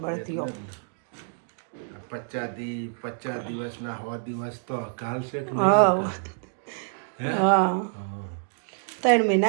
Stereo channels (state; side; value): silent; left; digital silence